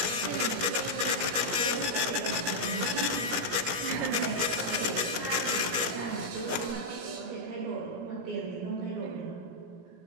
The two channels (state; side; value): late; left; 17 ms